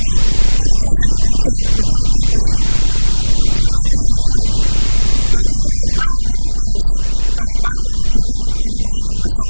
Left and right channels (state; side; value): inverted; both; correlation -1.00